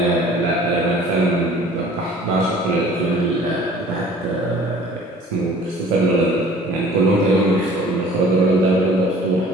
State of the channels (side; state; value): both; normal; correlation 0.49